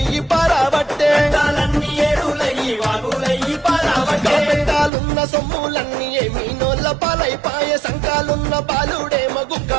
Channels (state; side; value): drops out; left; at 4.9 s